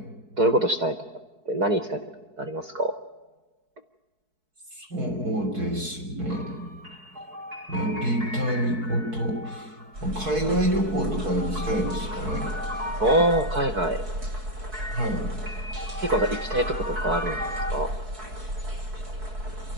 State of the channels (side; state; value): left; late; 4.6 ms